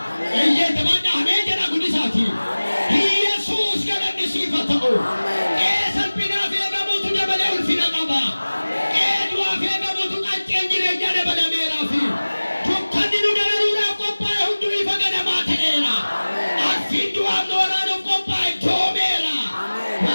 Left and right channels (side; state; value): both; inverted; correlation -1.00